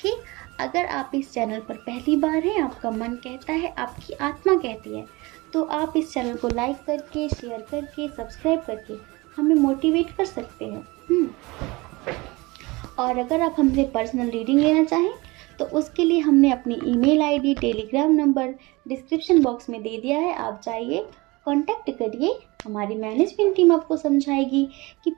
अगर आप इस चैनल पर पहली बार हैं, आपका मन कहता है, आपकी आत्मा कहती है, तो आप इस चैनल को लाइक करके, शेयर करके, सब्सक्राइब करके हमें मोटिवेट कर सकते हैं। और अगर आप हमसे पर्सनल रीडिंग लेना चाहें तो उसके लिए हमने अपनी email ID, Telegram number description box में दे दिया है। आप जाइए, कांटेक्ट करिए, हमारी मैनेजमेंट टीम आपको समझाएगी कि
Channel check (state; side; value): quieter; left; 23.5 dB